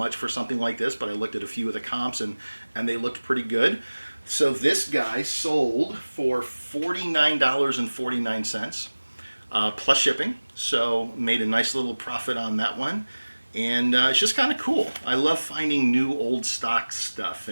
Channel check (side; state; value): both; inverted; correlation -1.00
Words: for something like this, but I looked at a few of the comps and they looked pretty good. So this guy sold for $49.49 plus shipping, so made a nice little profit on that one. And it's just kind of cool. I love finding new old stock stuff,